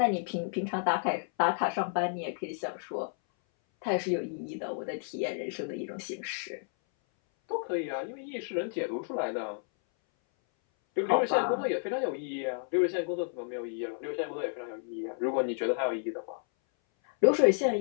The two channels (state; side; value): silent; right; 57 dB below the other